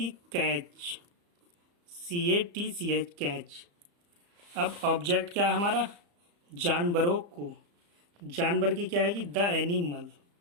है? Catch, CATCH, catch. अब ऑब्जेक्ट क्या है हमारा? जानवरों को, जानवर की क्या आएगी? The animal,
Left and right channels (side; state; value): left; late; 35 ms